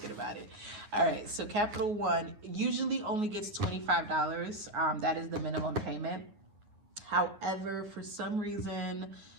about it. All right, so Capital One usually only gets $25. That is the minimum payment. However, for some reason,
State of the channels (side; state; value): left; late; 9.7 ms